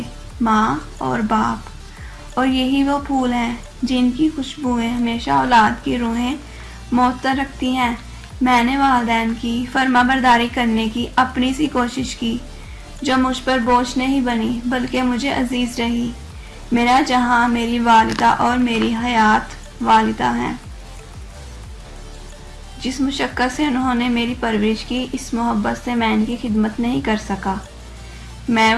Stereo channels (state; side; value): identical; both; correlation 1.00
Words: ماں اور باپ، اور یہی وہ پھول ہیں جن کی خوشبوئیں ہمیشہ اولاد کی روحیں معطر رکھتی ہیں۔ میں نے والدین کی فرما برداری کرنے کی اپنی سی کوشش کی، جو مجھ پر بوجھ نہیں بنی بلکہ مجھے عزیز رہی۔ میرا جہاں میری والدہ اور میری حیات والدہ ہیں، جس مشقت سے انہوں نے میری پرورش کی، اس محبت سے میں ان کی خدمت نہیں کر سکا۔ میں